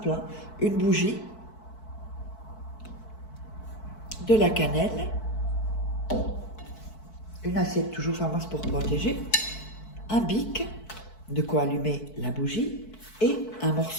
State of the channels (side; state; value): right; late; 4.6 ms